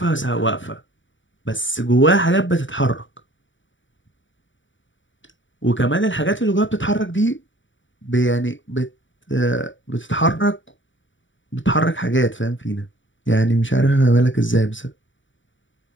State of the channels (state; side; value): late; right; 0.55 ms